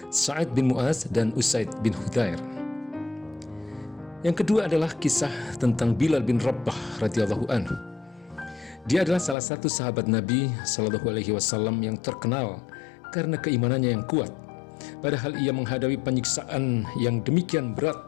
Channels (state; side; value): drops out; right; at 9.3 s